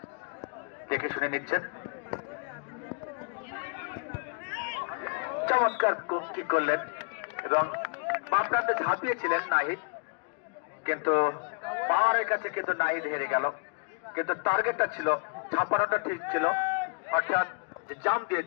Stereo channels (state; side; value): quieter; right; 36.3 dB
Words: দেখে শুনে নিচ্ছেন। চমৎকার কি করলেন এবং বাম প্রান্তে ঝাঁপিয়েছিলেন নাহিদ, কিন্তু পাওয়ারের কাছে কিন্তু নাহিদ হেরে গেল। কিন্তু টার্গেটটা ছিল, ঝাঁপানোটা ঠিক ছিল, অর্থাৎ যে জাম